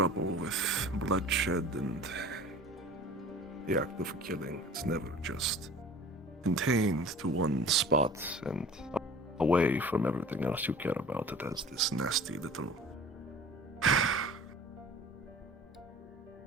with bloodshed and the act of killing. It's never just contained to one spot and away from everything else you care about. It has this nasty little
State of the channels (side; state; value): both; normal; correlation 0.44